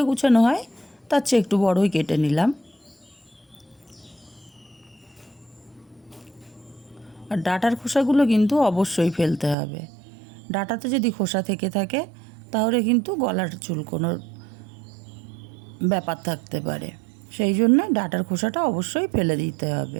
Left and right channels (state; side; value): drops out; left; at 9.6 s